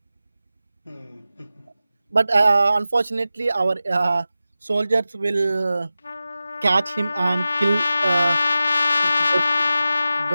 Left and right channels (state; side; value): inverted; both; correlation -0.94